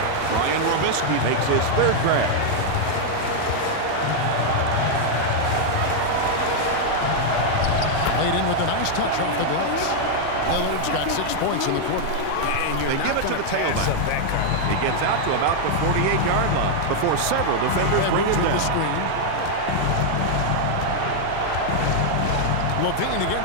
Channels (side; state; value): both; different; correlation 0.00